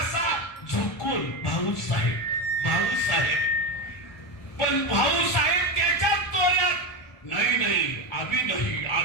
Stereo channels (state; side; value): late; right; 1.4 ms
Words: झुकून. भाऊसाहेब, भाऊसाहेब. पण भाऊसाहेब त्याच्या तोऱ्यात, नाही नाही अभी नहीं,